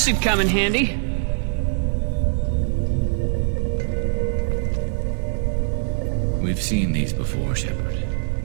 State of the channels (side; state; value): left; silent; 60 dB below the other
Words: should come in handy. We've seen these before, Shepard.